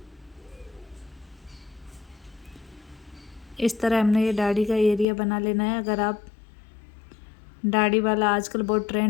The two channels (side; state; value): right; drops out; at 5.1 s